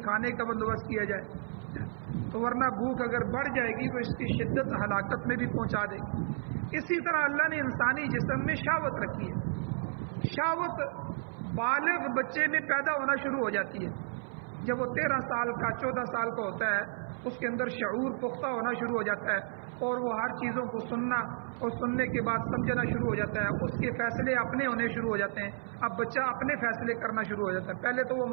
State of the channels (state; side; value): silent; left; 56 dB below the other